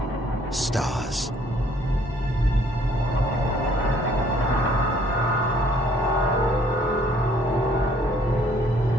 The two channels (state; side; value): normal; both; correlation 0.61